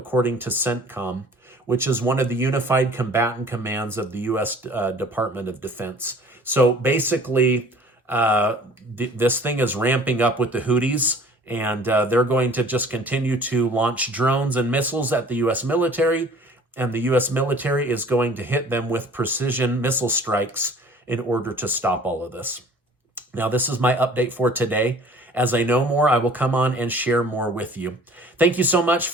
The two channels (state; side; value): normal; both; correlation 0.49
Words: to CENTCOM, which is one of the unified combatant commands of the U.S. Department of Defense. So basically, this thing is ramping up with the Houthis, and they're going to just continue to launch drones and missiles at the U.S. military, and the U.S. military is going to hit them with precision missile strikes in order to stop all of this. Now, this is my update for today. As I know more, I will come on and share more with you. Thank you so much